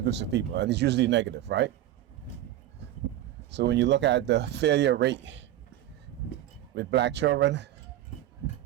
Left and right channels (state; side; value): quieter; left; 13.3 dB